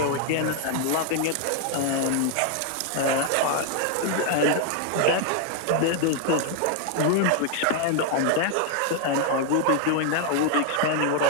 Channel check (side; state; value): both; different; correlation 0.00